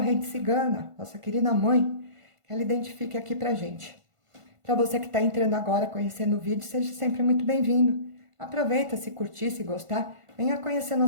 cigana, nossa querida mãe, que ela identifique aqui pra gente. Para você que está entrando agora, conhecendo o vídeo, seja sempre muito bem-vindo. Aproveita, se curtir, se gostar, venha conhecer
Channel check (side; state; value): left; late; 1.5 ms